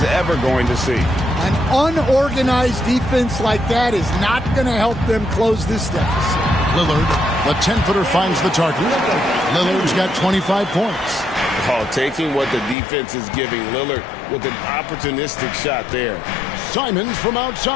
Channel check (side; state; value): right; drops out; at 12.8 s